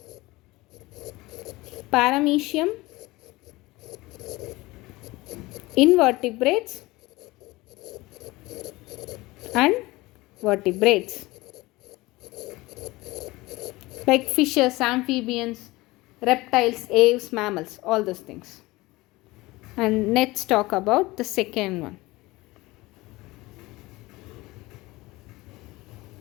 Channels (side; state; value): right; quieter; 20.6 dB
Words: paramecium, invertebrates and vertebrates like fishes, amphibians, reptiles, aves, mammals, all those things. And let's talk about the second one.